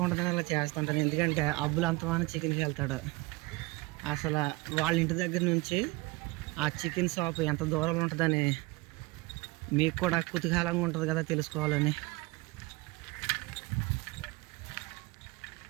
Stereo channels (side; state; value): left; quieter; 23.4 dB